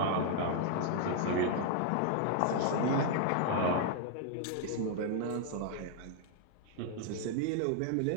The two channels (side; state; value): both; different; correlation 0.00